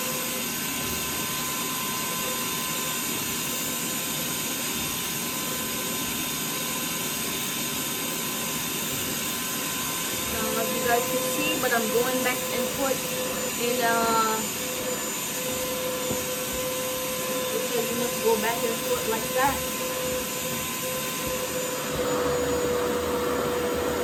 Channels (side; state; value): both; identical; correlation 1.00